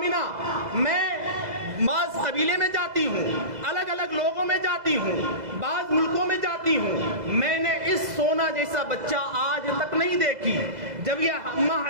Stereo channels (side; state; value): left; late; 2.0 ms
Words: میں بعض قبیلے میں جاتی ہوں، الگ الگ لوگوں میں جاتی ہوں، بعض ملکوں میں جاتی ہوں، میں نے اس سونا آمنہ جیسا بچہ آج تک نہیں دیکھی. جب یہ اماں